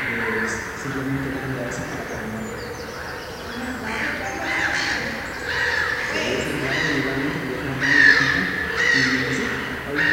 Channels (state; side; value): identical; both; correlation 1.00